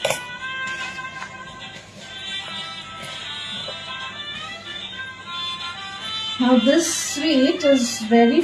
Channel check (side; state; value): both; identical; correlation 1.00